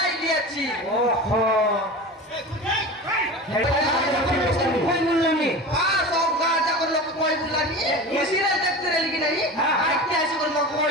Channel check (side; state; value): both; normal; correlation 0.31